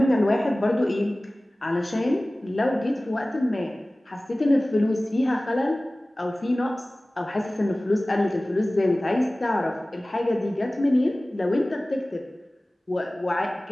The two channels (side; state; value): both; normal; correlation 0.98